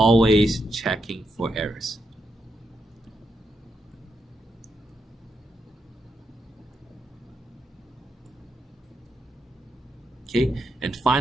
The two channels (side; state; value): both; normal; correlation 0.82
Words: checking for errors. Okay, and